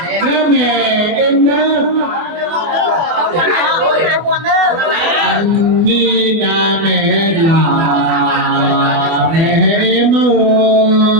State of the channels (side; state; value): left; late; 24 ms